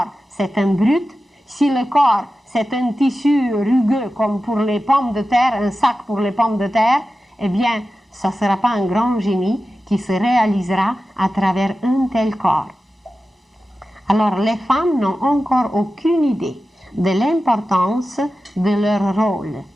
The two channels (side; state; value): both; normal; correlation 0.93